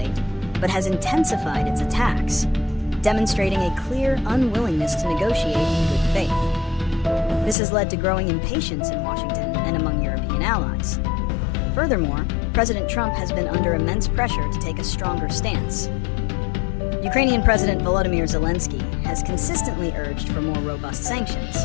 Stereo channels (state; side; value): drops out; right; at 7.6 s